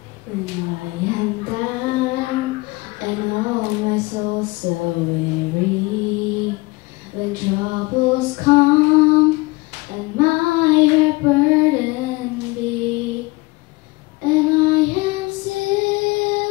When I am down and all my soul so weary, when troubles come and my heart burden be, and I am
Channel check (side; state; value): right; quieter; 23.0 dB